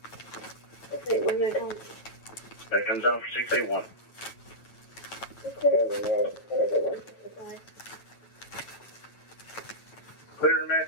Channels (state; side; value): late; right; 8.9 ms